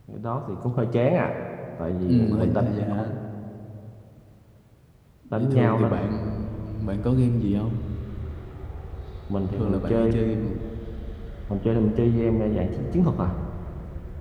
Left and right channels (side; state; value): both; identical; correlation 1.00